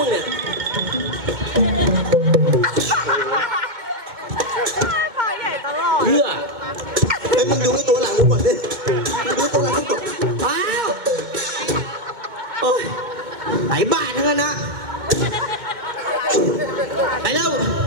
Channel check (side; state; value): left; late; 2.2 ms